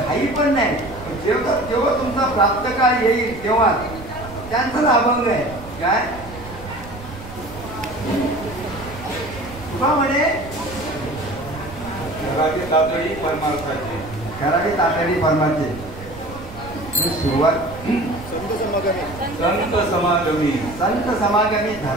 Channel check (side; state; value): right; noise; rumble, 15 dB below the sound